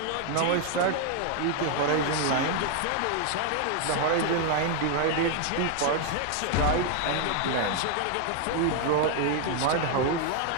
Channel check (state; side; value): different; both; correlation 0.00